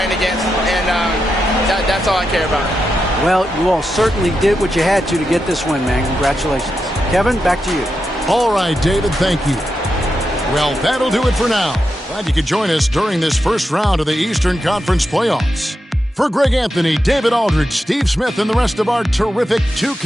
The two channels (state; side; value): normal; both; correlation 0.87